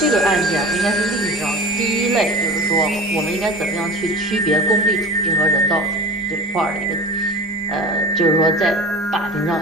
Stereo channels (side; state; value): left; noise; hum, 25 dB below the sound